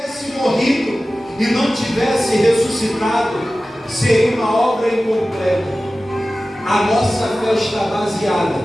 morrido e não tivesse ressuscitado, seria uma obra incompleta. A nossa fé está baseada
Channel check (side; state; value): both; normal; correlation 0.96